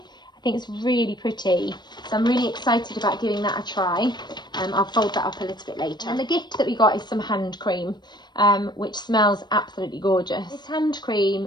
think it's really pretty, so I'm really excited about giving that a try. I'll fold that up a little bit later. And the gift that we got is some hand cream, which smells absolutely gorgeous. This hand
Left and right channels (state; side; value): late; right; 0.21 ms